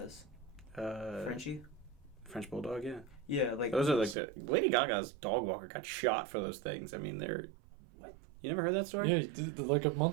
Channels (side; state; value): left; drops out; at 4.2 s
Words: Frenchie? French bulldog, yeah. Yeah, like those are like the Lady Gaga's dog walker got shot for those things. I mean, they're what? You never heard that story? Yeah, like a